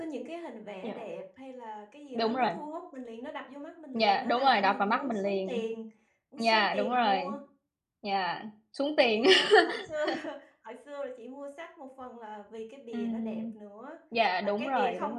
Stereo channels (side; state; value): both; identical; correlation 1.00